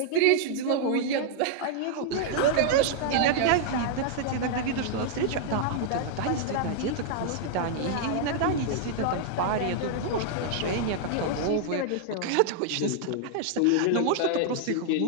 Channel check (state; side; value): different; both; correlation -0.01